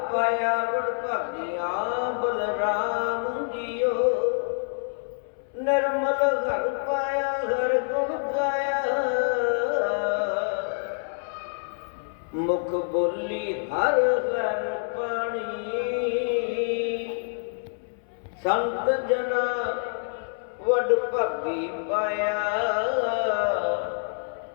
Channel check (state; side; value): silent; right; 60 dB below the other